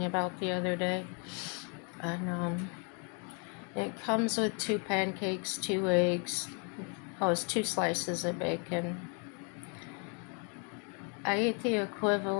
about the other day. And it comes with 2 pancakes, 2 eggs. Oh, it's 2 slices of bacon. I ate the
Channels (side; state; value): right; quieter; 37.1 dB